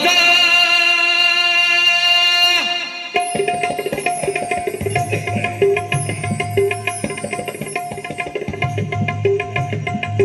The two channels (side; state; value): both; identical; correlation 1.00